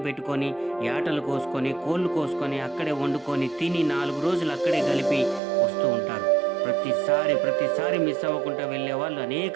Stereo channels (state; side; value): drops out; left; at 5.4 s